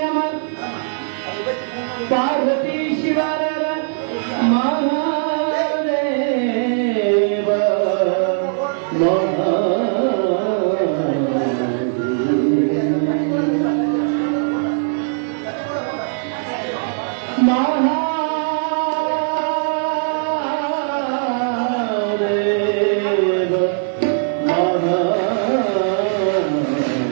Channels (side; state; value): left; silent; digital silence